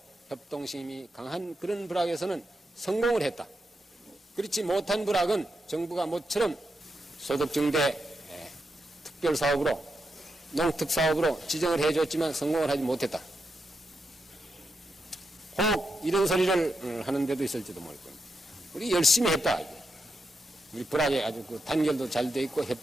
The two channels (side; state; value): both; normal; correlation 0.85